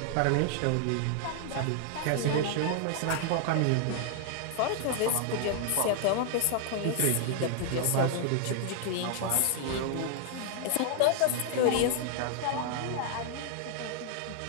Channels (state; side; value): different; both; correlation 0.00